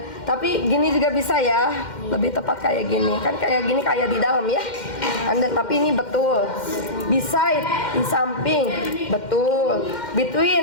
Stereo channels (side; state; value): right; late; 2.1 ms